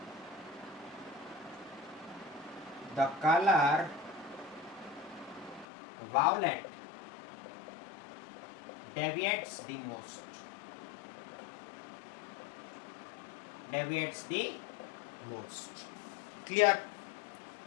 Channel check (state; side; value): drops out; right; at 5.7 s